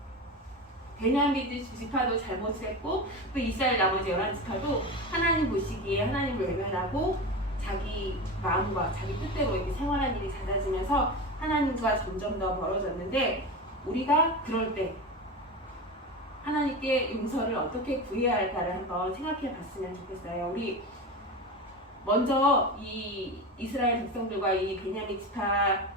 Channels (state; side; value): normal; both; correlation 0.25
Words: 베냐민 지파도 잘못을 했고, 또 이스라엘 나머지 11지파도 하나님 보시기에 하나님을 외면하고 자기 마음과 자기 뜻대로 이렇게 생활한 일이 잦아지면서 하나님과 점점 더 멀어졌는데, 우리가 그럴 때 하나님께 용서를 어떻게 구해야 할까를 한번 생각해 봤으면 좋겠어요. 우리 먼저 이 이스라엘 백성들과 이 베냐민